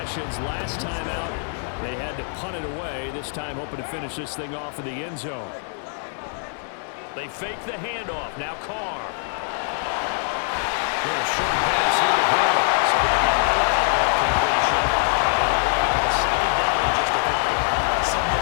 Last time out, they had to punt it away. This time, hoping to finish this thing off in the end zone. They fake the handoff. Now Carr. A short pass here to Hill. So they get out of that completion. And second down and just a couple. So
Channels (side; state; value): right; silent; 56 dB below the other